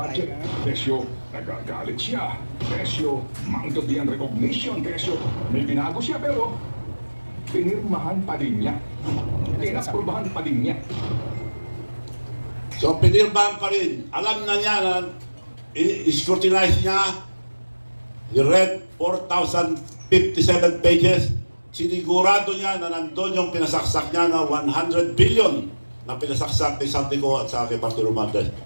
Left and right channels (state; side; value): inverted; both; correlation -1.00